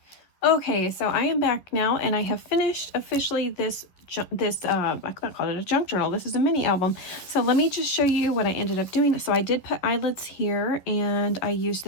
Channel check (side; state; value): right; late; 11 ms